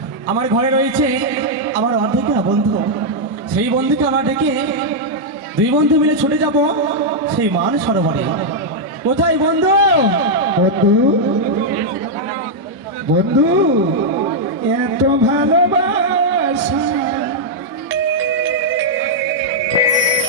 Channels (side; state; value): both; normal; correlation -0.04